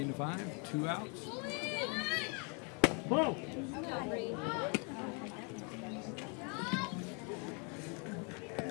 2 outs. Whoa!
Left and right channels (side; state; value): right; quieter; 36.0 dB